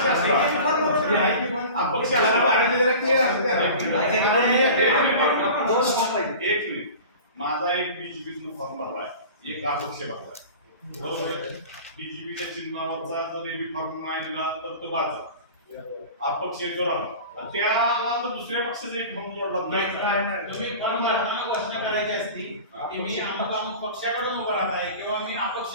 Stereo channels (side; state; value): both; inverted; correlation -0.38